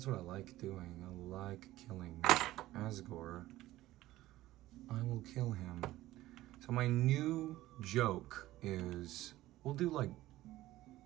what I like doing. I like killing Asgore. I will kill him. So my new joke is, we'll do like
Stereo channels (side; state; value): left; quieter; 16.1 dB